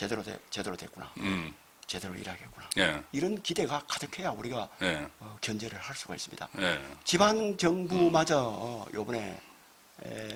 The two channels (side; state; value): both; identical; correlation 1.00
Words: 됐구나. 제대로 일하겠구나. 예. 이런 기대가 가득해야 우리가 예. 견제를 할 수가 있습니다. 예. 지방 정부마저 요번에